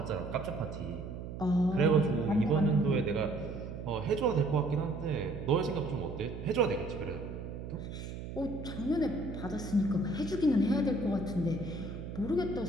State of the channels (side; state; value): right; noise; hum, 8 dB below the sound